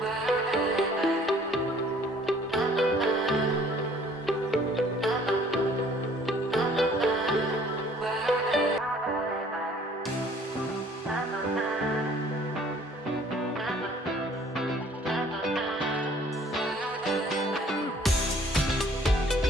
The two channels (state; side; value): normal; both; correlation 0.56